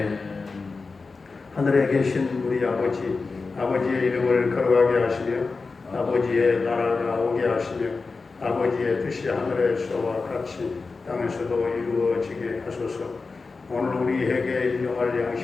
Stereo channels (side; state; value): right; quieter; 4.2 dB